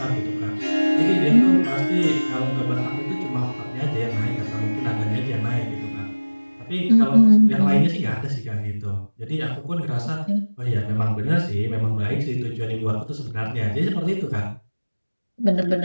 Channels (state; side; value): inverted; both; correlation -1.00